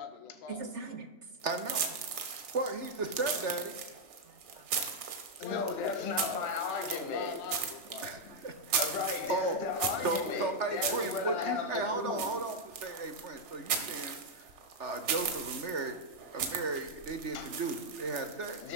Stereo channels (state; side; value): late; left; 3.6 ms